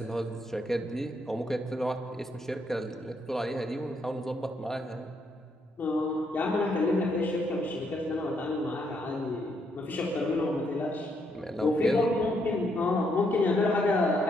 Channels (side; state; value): both; normal; correlation 0.75